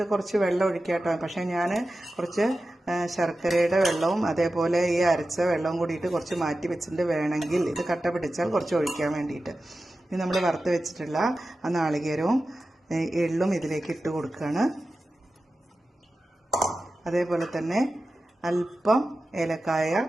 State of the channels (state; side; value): normal; both; correlation 0.94